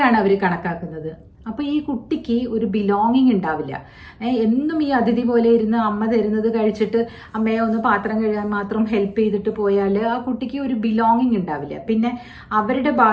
അവർ കണക്കാക്കുന്നത്. അപ്പോൾ ഈ കുട്ടിക്ക് ഒരു ബിലോങ്ങിങ് ഉണ്ടാവില്ല. എന്നും ഈ അതിഥി പോലെ ഇരുന്ന് അമ്മ തരുന്നത് കഴിച്ചിട്ട് അമ്മയെ ഒന്ന് പാത്രം കഴുകാൻ മാത്രം ഹെൽപ്പ് ചെയ്തിട്ട് പോയാൽ ആ കുട്ടിക്ക് ഒരു ബിലോങ്ങിങ് ഉണ്ടാവില്ല. പിന്നെ അവരുടെ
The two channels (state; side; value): identical; both; correlation 1.00